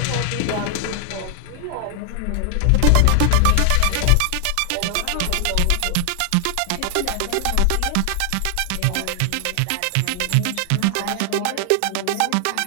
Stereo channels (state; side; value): different; both; correlation 0.00